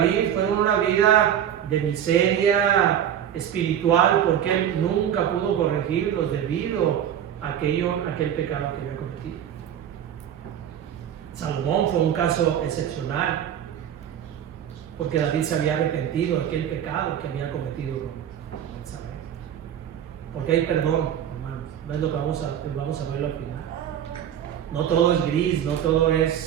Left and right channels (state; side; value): quieter; left; 9.8 dB